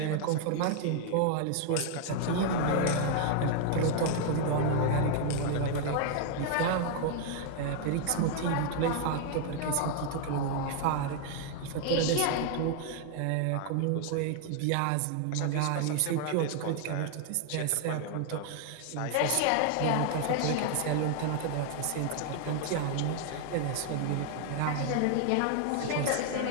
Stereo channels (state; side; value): different; both; correlation 0.00